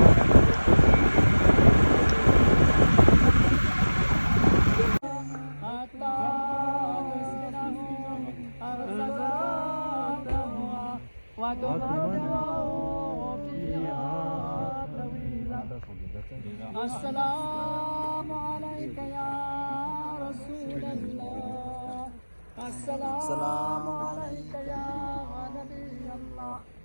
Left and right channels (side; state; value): both; inverted; correlation -1.00